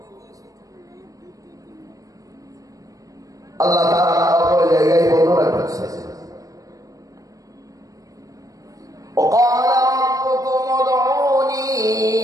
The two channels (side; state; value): left; late; 0.17 ms